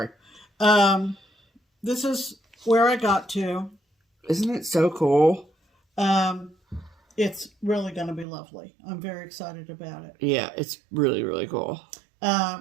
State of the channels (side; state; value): left; drops out; at 8.2 s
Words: This is where I got to. Isn't it so cool? It's really going to be lovely. I'm very excited about it. Yeah, it's really, really cool.